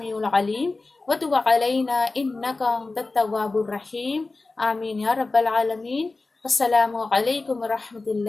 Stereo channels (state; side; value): quieter; right; 3.5 dB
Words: العلیم وتب علینا انک انت التواب الرحیم. آمین یا رب العالمین. السلام علیکم ورحمۃ